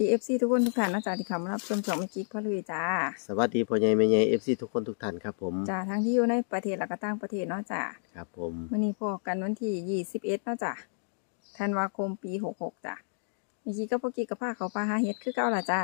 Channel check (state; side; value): silent; right; digital silence